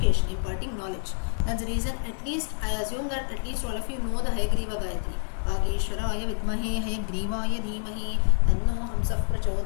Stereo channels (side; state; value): right; silent; digital silence